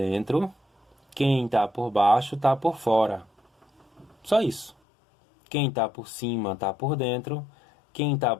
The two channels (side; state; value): right; drops out; at 4.8 s